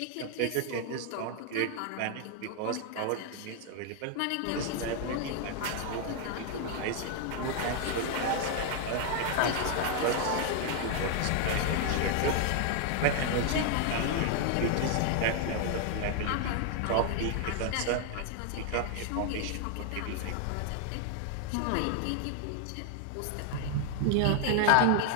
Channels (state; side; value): different; both; correlation 0.00